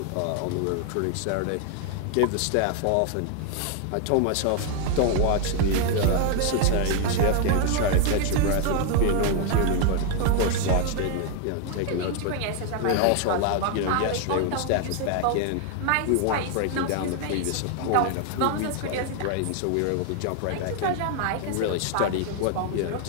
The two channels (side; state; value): both; different; correlation 0.00